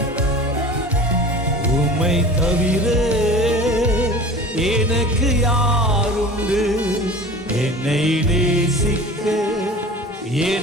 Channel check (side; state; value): both; normal; correlation 0.38